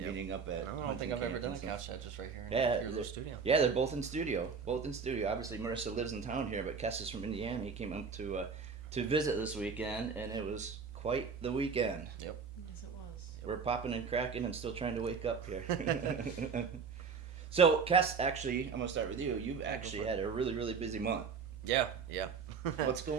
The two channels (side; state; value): left; quieter; 5.6 dB